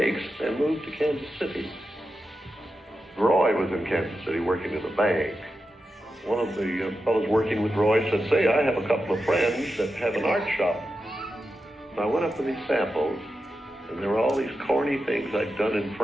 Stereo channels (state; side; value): normal; both; correlation 0.90